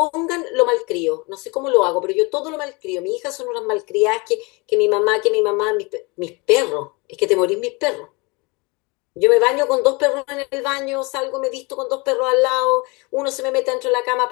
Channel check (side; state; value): right; quieter; 27.6 dB